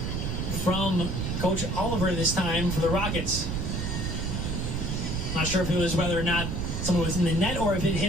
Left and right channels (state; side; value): noise; right; rumble, 2 dB below the sound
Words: from Coach Oliver this time for the Rockets. Not sure if it was whether or not someone was in the net or if it